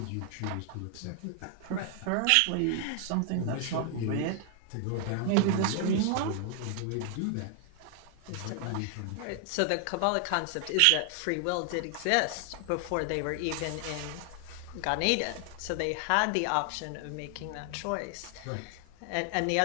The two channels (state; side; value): different; both; correlation 0.00